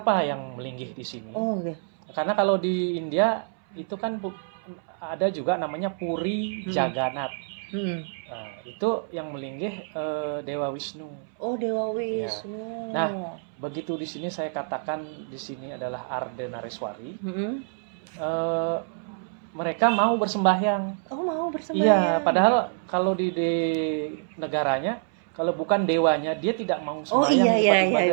yang melinggih di sini. Karena kalau di India itu kan ada juga namanya Puri Jagannath. Nah, itu yang melinggih Dewa Wisnu. Oh, Dewa Wisnu. Ya. Nah, begitu di sini saya katakan di sini adalah Ardenareswari. Mereka mau bersembahyang. Oh, mau bersembahyang. Iya, padahal kalau di negaranya kalau bukan dewanya dia tidak mau sembahyang di tempat ibadah.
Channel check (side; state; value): left; silent; 60 dB below the other